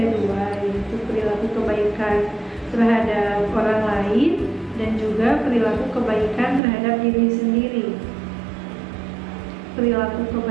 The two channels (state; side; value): drops out; left; at 6.6 s